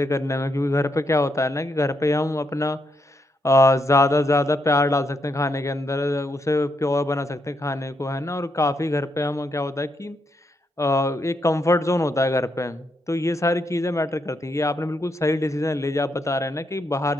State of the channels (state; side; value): normal; both; correlation 0.79